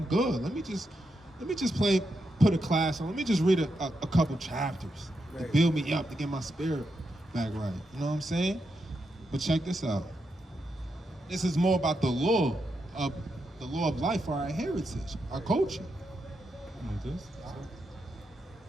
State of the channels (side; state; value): both; normal; correlation 0.84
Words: good. Let me just put a class on. Let me just read a couple chapters to build me up, to get my spirit back right. You know what I'm saying? But check this out. This is more about the law of life for our heritage, our culture.